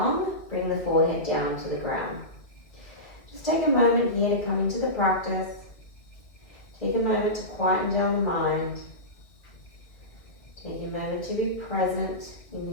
bring the forehead down to the ground. Just take a moment here to come into the practice. Take a moment to quieten down the mind. Take a moment to be present in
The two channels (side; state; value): right; late; 2.1 ms